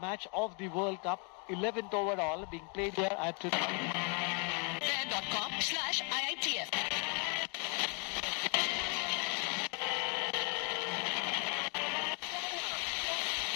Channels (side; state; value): right; quieter; 34.5 dB